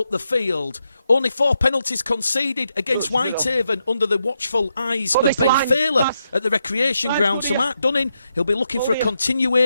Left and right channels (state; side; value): inverted; both; correlation -0.83